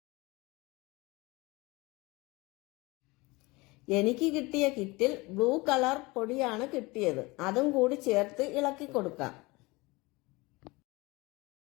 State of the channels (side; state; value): right; quieter; 23.5 dB